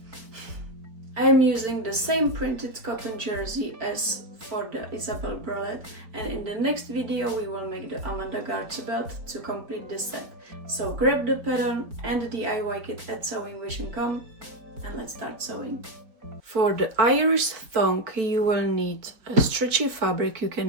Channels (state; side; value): late; left; 4.5 ms